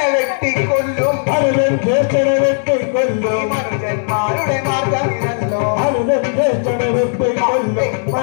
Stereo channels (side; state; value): right; silent; digital silence